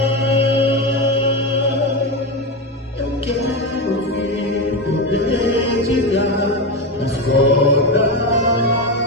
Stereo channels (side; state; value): both; normal; correlation 0.16